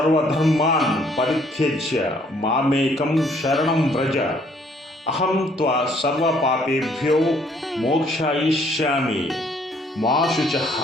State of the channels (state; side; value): normal; both; correlation 0.63